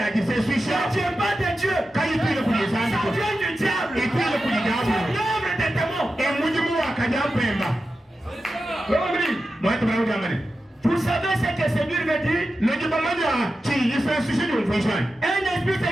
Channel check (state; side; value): normal; both; correlation 0.92